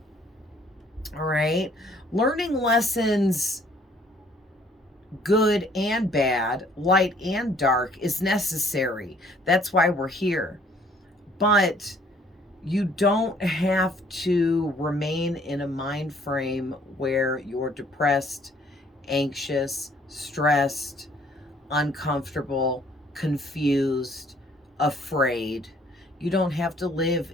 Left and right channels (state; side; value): normal; both; correlation 0.60